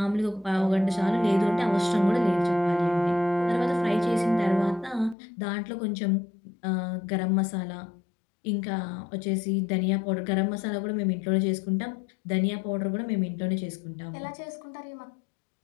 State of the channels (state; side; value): drops out; right; at 5.2 s